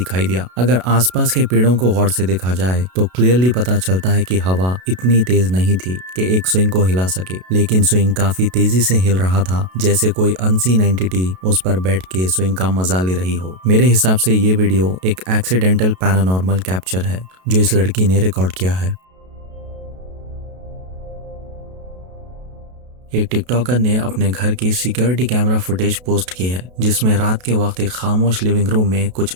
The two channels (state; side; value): late; left; 32 ms